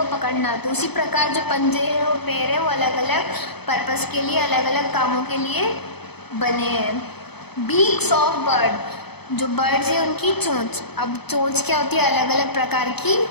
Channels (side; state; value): right; late; 0.98 ms